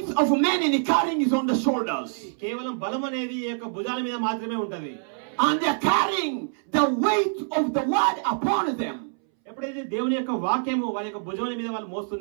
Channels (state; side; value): silent; left; 61 dB below the other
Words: of men in carrying is on the shoulders. కేవలం బలం అనేది ఈ యొక్క భుజాల మీద మాత్రమే ఉంటది. And they are carrying the weight of the word upon them. ఎప్పుడైతే దేవుని యొక్క వాక్యము వాళ్ళ యొక్క భుజముల మీద వాళ్ళు